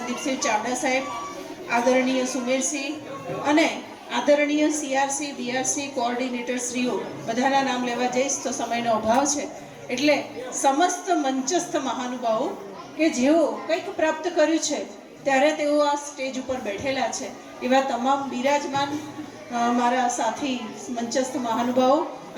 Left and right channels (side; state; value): both; identical; correlation 1.00